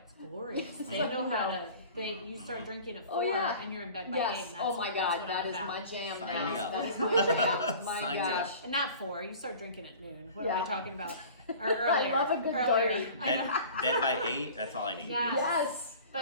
glorious. They know how to. You start drinking at 4 Oh, yeah. and you're in bed by 8. Yes. And Oh my that's God, what that I'm is about. my jam. Sign Yes, me up. that is my jam. My Sign me up. gosh. Not 4. You start drinking at noon. What am Yeah. I talking about? Or earlier. I love a good earlier. dirty. I know. Bed by 8, that's all I need. Yeah. Yes.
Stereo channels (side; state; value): both; inverted; correlation -0.42